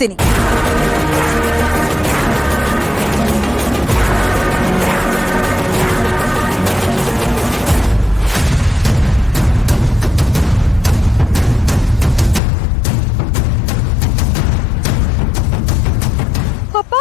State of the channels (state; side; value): drops out; right; at 12.4 s